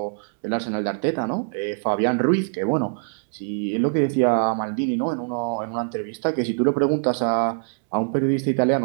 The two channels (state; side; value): silent; left; digital silence